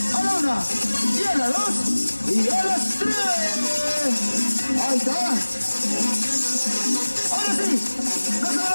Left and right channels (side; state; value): both; inverted; correlation -1.00